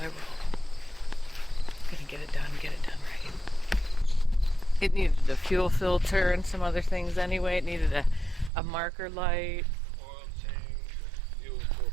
roll. I'm gonna get it done right. It needed a fuel filter and some other things anyway. It needed a marker light. Oil change, fuel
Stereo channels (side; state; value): left; drops out; at 8.5 s